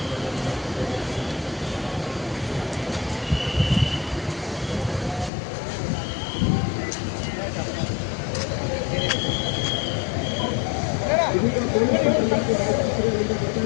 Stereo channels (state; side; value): drops out; right; at 5.3 s